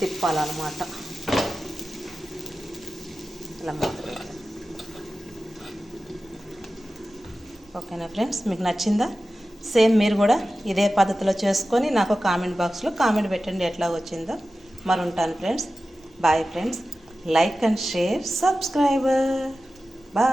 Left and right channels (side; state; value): both; normal; correlation 0.94